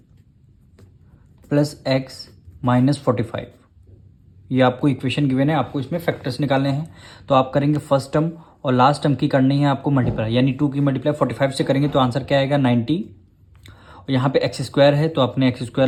प्लस x माइनस 45। ये आपको इक्वेशन गिवन है, आपको इसमें फैक्टर्स निकालने हैं। तो आप करेंगे फर्स्ट टर्म और लास्ट टर्म की करनी है आपको मल्टीप्लाई, यानी 2 की मल्टीप्लाई 45 से करेंगे तो आंसर क्या आएगा 90। और यहाँ पे x² है तो आपने x²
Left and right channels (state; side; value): identical; both; correlation 1.00